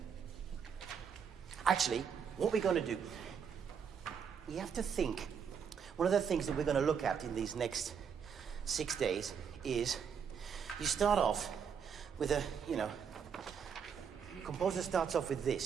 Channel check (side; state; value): left; quieter; 7.0 dB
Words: Actually, what we're going to do, you have to think. One of the things that we're going to look at in these next 6 days is you start off with a, composer starts off with